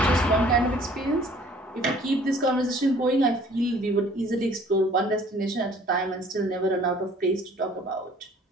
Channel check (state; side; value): normal; both; correlation 0.54